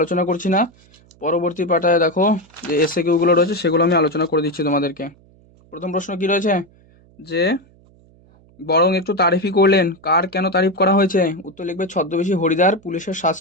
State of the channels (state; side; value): noise; right; hum, 29 dB below the sound